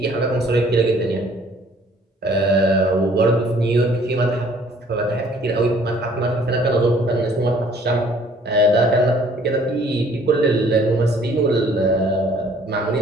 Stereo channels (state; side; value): normal; both; correlation 0.58